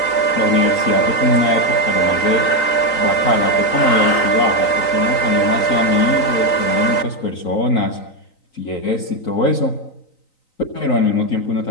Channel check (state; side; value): late; right; 3.9 ms